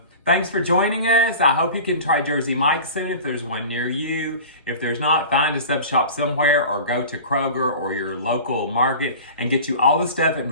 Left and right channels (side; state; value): both; inverted; correlation -0.37